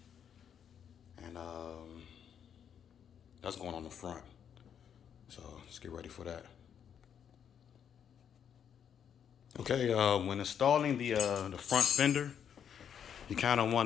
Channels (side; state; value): right; quieter; 8.3 dB